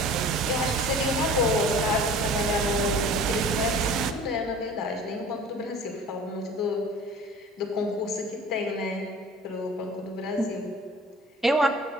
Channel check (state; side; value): normal; both; correlation 0.44